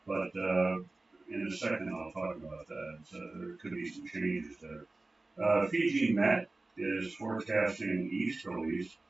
But in a second, I'll talk about that. So there could be some changes there. Fiji Met is forecasting easterlies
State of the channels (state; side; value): quieter; left; 3.2 dB